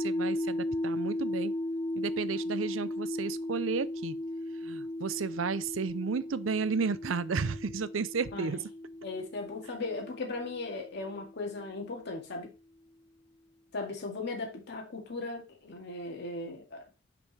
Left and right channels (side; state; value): both; normal; correlation 0.36